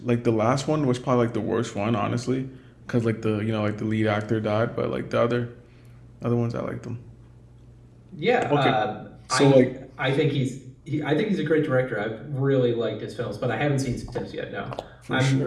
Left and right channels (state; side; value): identical; both; correlation 1.00